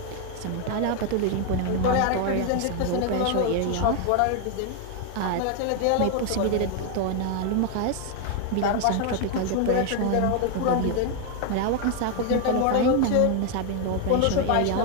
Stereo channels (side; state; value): both; different; correlation 0.01